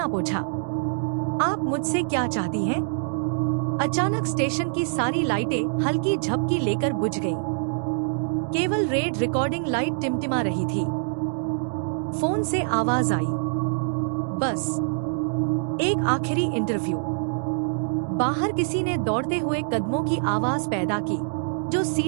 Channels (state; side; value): silent; left; digital silence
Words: पोंछा। आप मुझसे क्या चाहती हैं? अचानक स्टेशन की सारी लाइटें हल्की झपकी लेकर बुझ गईं। केवल रेड रिकॉर्डिंग लाइट टिमटिमा रही थी। फोन से आवाज आई, बस एक आखिरी इंटरव्यू। बाहर किसी ने दौड़ते हुए कदमों की आवाज पैदा की, जो